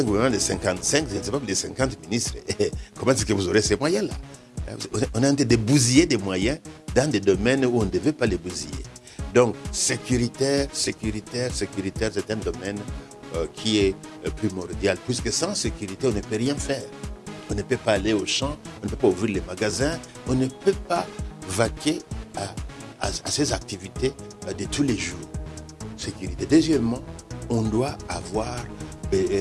un gouvernement de 55, je ne sais pas, de 50 ministres, comment est-ce que vous aurez ces moyens-là? On est en train de bousiller des moyens dans des domaines où on ne devait pas les bousiller. Donc, sécuritaire, c'est un domaine qui est primordial, puisque sans sécurité, on ne peut rien faire. On ne peut pas aller au champ, on ne peut pas ouvrir les magasins, on ne peut pas vaquer à ces activités de tous les jours. Sécurité. Deuxièmement, on doit avoir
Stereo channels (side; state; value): both; identical; correlation 1.00